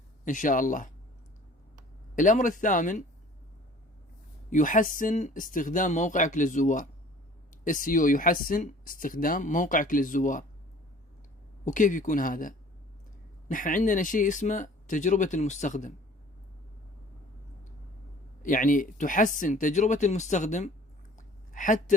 إن شاء الله. الأمر الثامن يحسن استخدام موقعك للزوار. SEO يحسن استخدام موقعك للزوار. وكيف يكون هذا؟ نحن عندنا شيء اسمه تجربة المستخدم، يعني تحسن تجربة المستخدم حتى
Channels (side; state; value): both; normal; correlation 0.50